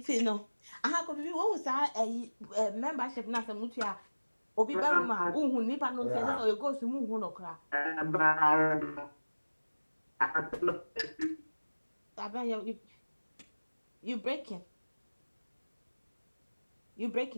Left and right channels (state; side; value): inverted; both; correlation -1.00